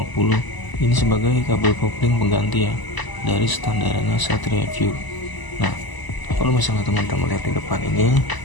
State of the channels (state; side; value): late; right; 1.0 ms